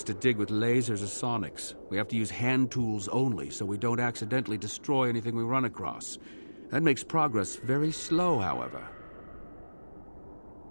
to dig with lasers or sonics. We have to use hand tools only, so we don't accidentally destroy anything we run across. That makes progress very slow, however.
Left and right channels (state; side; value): inverted; both; correlation -1.00